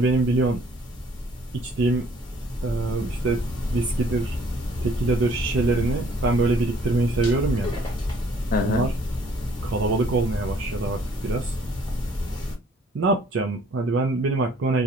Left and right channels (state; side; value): normal; both; correlation 0.60